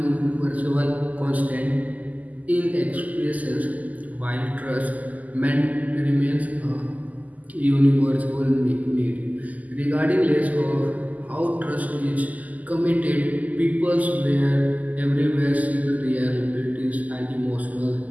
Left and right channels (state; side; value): late; left; 0.078 ms